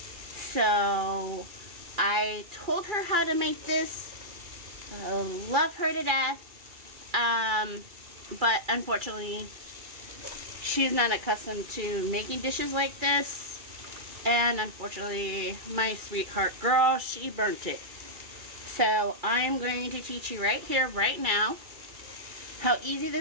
So I told her how to make this. I love her to death. But unfortunately, she's not accustomed to making dishes like this. And unfortunately, my sweetheart girl, she burnt it. So I'm going to teach you right here, right now, how easy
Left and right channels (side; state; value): left; late; 2.3 ms